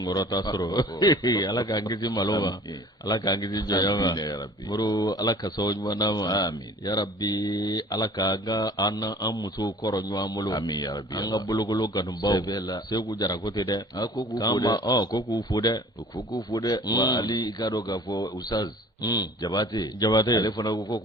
sɔrɔ ala k'an kisi malo ma ala k'an kisi jɔnya ma muru ala ka sababu ɲuman d'a ma yarabi ala ka an musow kɔrɔ ɲɔgɔn bolo an ka bolokolo kanubaw segu jara ko tɛ dɛ ko k'u fo dɛ k'u fo dɛ wa hali i k'a dɔn k'a fɔ usaz Jabate ale fana ko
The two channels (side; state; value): both; normal; correlation 0.48